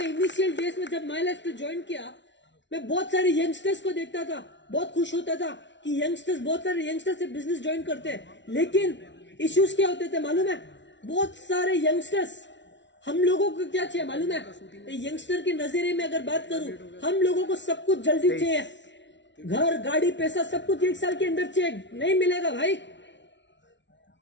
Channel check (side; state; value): right; late; 0.52 ms